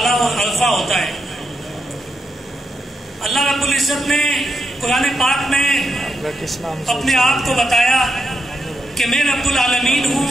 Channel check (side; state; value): both; normal; correlation 0.83